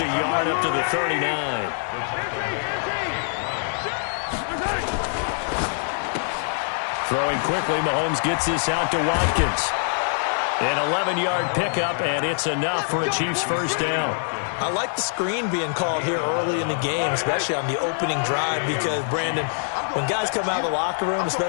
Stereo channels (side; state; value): right; silent; digital silence